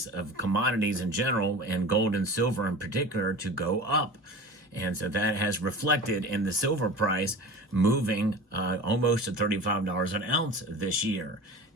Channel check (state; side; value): normal; both; correlation 0.35